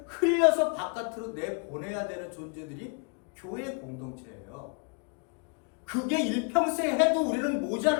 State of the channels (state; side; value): quieter; right; 37.2 dB